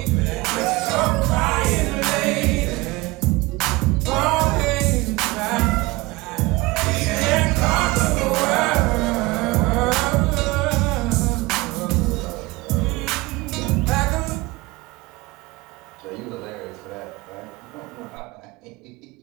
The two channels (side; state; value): left; quieter; 22.0 dB